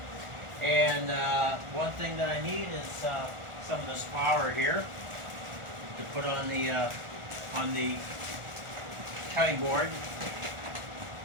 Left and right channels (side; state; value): left; late; 1.4 ms